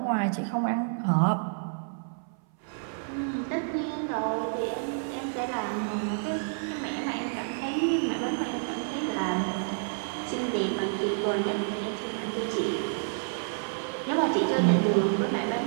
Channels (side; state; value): left; silent; 58 dB below the other